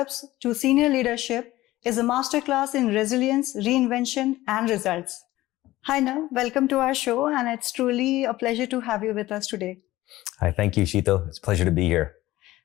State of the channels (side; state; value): right; quieter; 16.8 dB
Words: to senior leadership is a masterclass in resilience, reinvention, and results. Hi, Nav. Welcome to our show, and it's truly a pleasure to have you with us today. Hi, thank you, Sheetal. It's a pleasure to be here.